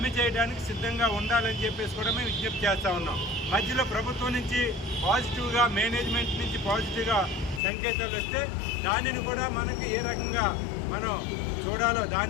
చేయడానికి సిద్ధంగా ఉండాలని చెప్పేసి కూడా మేము విజ్ఞప్తి చేస్తూ ఉన్నాం. మధ్యలో ప్రభుత్వం నుంచి పాజిటివ్గా, మేనేజ్మెంట్ నుంచి పాజిటివ్గా సంకేతాలు వస్తే దానిని కూడా మనకి ఏ రకంగా మనం చూడాలో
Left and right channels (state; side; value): drops out; right; at 7.6 s